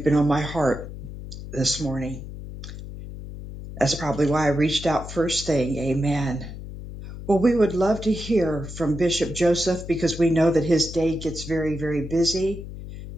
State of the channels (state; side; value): noise; left; hum, 11 dB below the sound